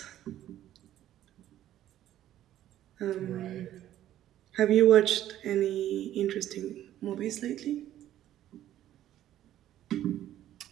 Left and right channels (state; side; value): quieter; left; 12.5 dB